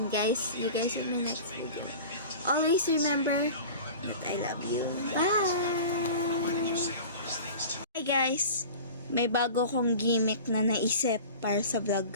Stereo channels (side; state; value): both; inverted; correlation -0.38